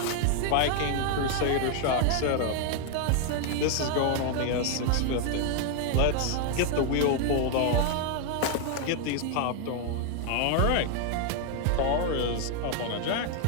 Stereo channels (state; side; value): different; both; correlation 0.00